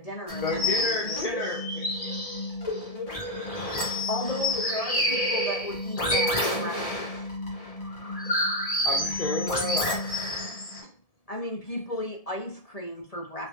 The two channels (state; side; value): late; right; 1.7 ms